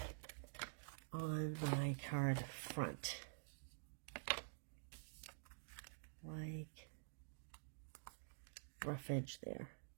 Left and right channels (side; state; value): left; silent; digital silence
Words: on my card front. Like rough edge there.